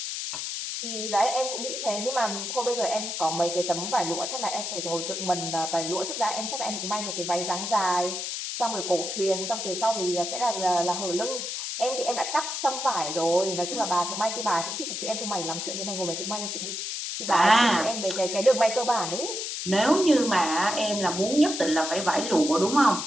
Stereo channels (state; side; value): noise; left; hiss, 4 dB below the sound